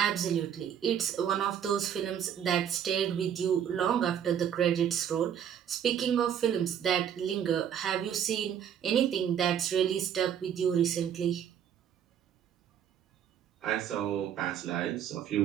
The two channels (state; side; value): quieter; left; 9.0 dB